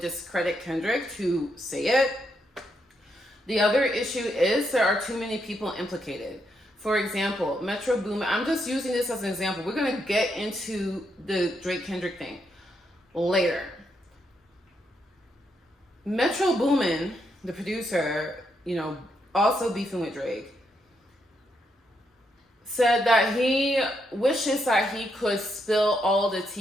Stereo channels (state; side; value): normal; both; correlation 0.79